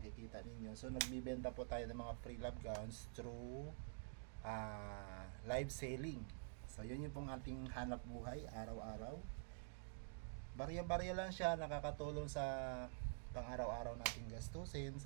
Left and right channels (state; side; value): silent; left; digital silence